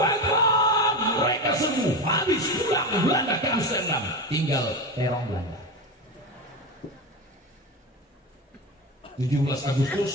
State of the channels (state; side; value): normal; both; correlation 0.21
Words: Akbar. Mereka semua habis, pulang Belanda ke Amsterdam, tinggal terong Belanda. 17 Agustus